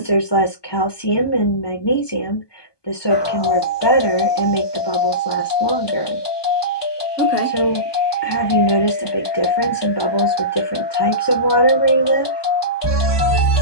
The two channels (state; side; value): late; right; 1.2 ms